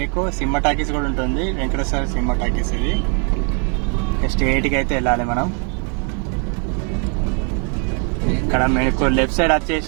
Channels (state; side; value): quieter; left; 38.3 dB